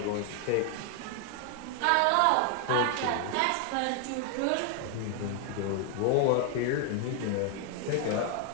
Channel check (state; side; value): different; both; correlation 0.01